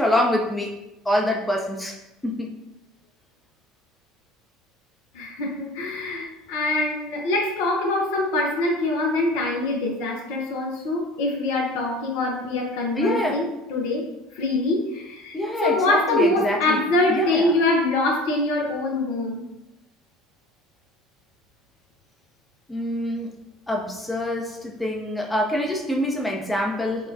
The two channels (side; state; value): both; normal; correlation 0.44